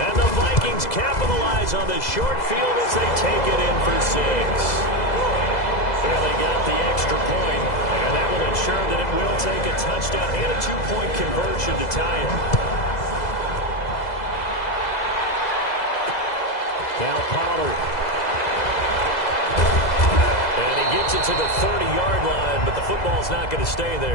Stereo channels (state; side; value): late; right; 2.0 ms